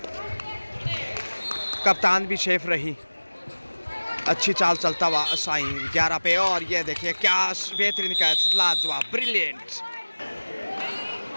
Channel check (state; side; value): inverted; both; correlation -1.00